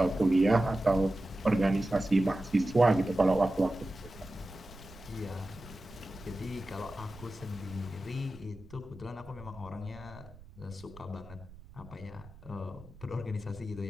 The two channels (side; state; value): right; noise; rumble, 19 dB below the sound